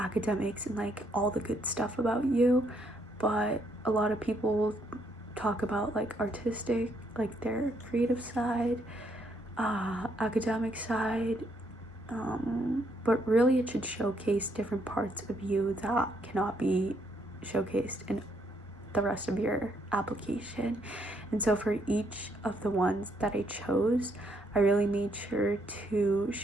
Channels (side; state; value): both; normal; correlation 0.72